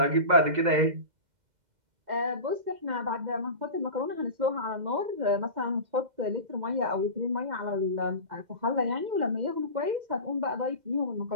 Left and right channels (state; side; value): late; left; 2.1 ms